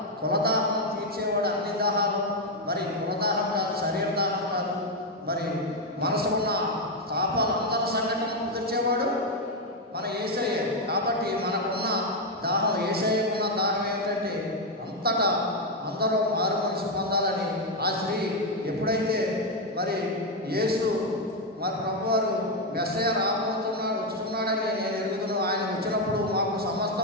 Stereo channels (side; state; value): both; normal; correlation 0.04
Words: కులదాహం తీర్చేవాడు అన్ని దాహాలు, మరి కులదాహం కాదు, శరీర దాహం కాదు, మరి మనసు ఉన్న తాపాలు అందరి సంఘటనలు తెచ్చేవాడు మన యేసయ్య. కాబట్టి మనకున్న దాహం, యేసయ్యకున్న దాహం ఏమిటంటే అంతటా అందరూ మారు మనసు పొందాలని. ఆ స్త్రీ ఎప్పుడైతే మరి యేసు మరి ప్రభువారు మెస్సయ్య వస్తున్నాడని నేను ఎరుగుతున్నాను, ఆయన వచ్చినప్పుడు మాకు